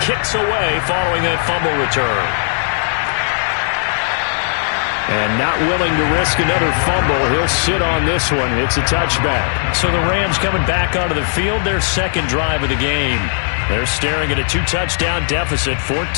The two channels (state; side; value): silent; right; digital silence